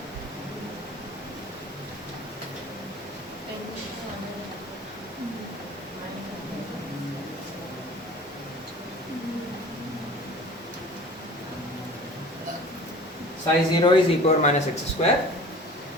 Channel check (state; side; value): normal; both; correlation 0.43